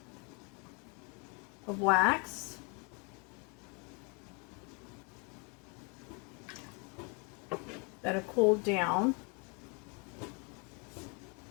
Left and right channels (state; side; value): quieter; right; 33.3 dB